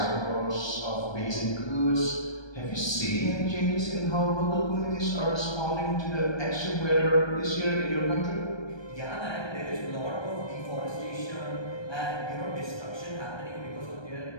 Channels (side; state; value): right; late; 1.3 ms